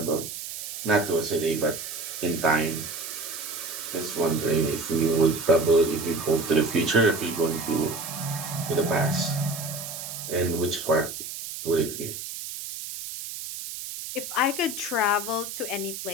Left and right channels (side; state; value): right; noise; hiss, 8 dB below the sound